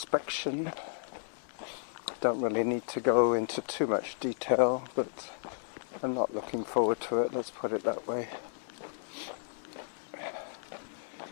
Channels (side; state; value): right; silent; digital silence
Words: Don't really need to go into too much detail, but I'm not looking forward to it, let's put it that way.